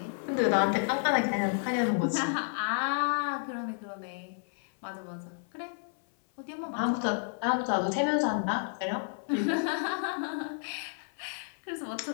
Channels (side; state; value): right; silent; 57 dB below the other